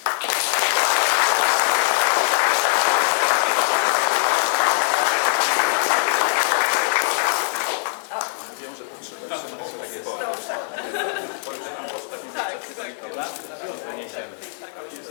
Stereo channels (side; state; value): right; silent; digital silence